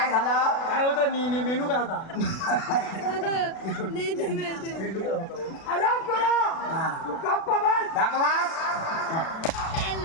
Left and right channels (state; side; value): late; right; 36 ms